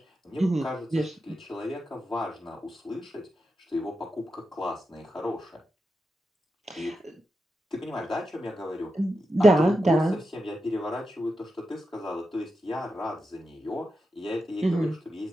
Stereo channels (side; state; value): both; normal; correlation 0.88